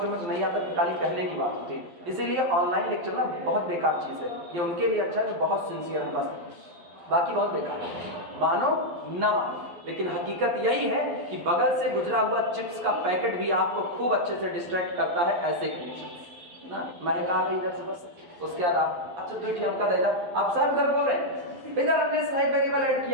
में नहीं आता कि खाली कहने की बात होती है। इसीलिए ऑनलाइन लेक्चर ना बहुत बेकार चीज़ है, ये उनके लिए अच्छा है जो बहुत सिंसियर है बस, बाकी बहुत बेकार है, मानो ना मानो। लेकिन हकीकत यही है कि बगल से गुजरा हुआ चिप्स का पैकेट भी आपको खूब अच्छे से डिस्ट्रैक्ट करता है ऐसे कंडीशन ना। महक आ गई इधर से बस, उसके बाद आप अच्छा 2 अंक देगा, अब सर उधर बोल रहे हैं इधर हमने स्नाइप वेरिएबल ऐड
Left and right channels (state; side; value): late; left; 12 ms